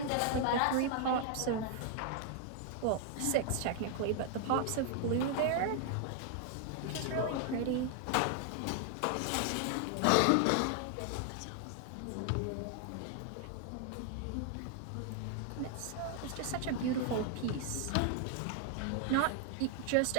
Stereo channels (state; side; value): different; both; correlation 0.00